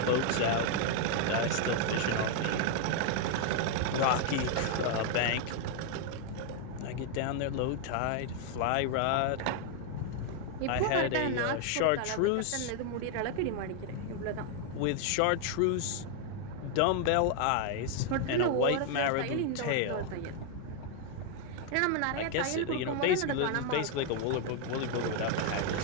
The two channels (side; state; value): both; different; correlation 0.00